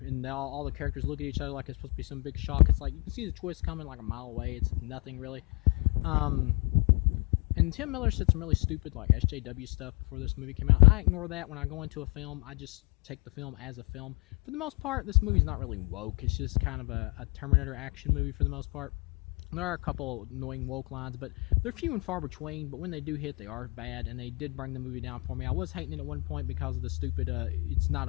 all the characters look at each other like it's supposed to be some big shock. It's like, you can see the twist coming like a mile away. It's nothing, really. And Tim Miller said some really stupid, like, SJW stuff before this movie came out. I ignore that when I go into a film. I just take the film as a film. For the most part, this movie's not really woke. It's just kind of a Terminator action movie for the most part. There are a couple annoying woke lines, but they're few and far between. But when they do hit, they are bad, and they did bring the movie down for me. I was hating it at one point because of the stupid, it's not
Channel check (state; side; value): quieter; right; 29.6 dB